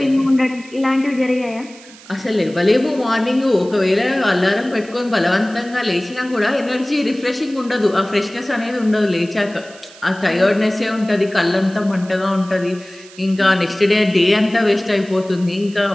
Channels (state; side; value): noise; right; hiss, 21 dB below the sound